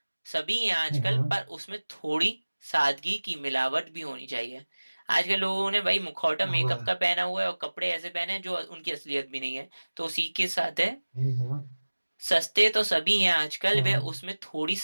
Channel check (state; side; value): inverted; both; correlation -1.00